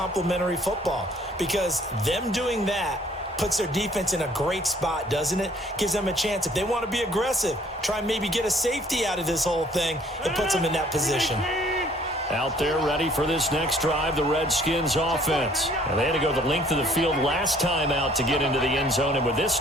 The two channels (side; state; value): both; normal; correlation 0.59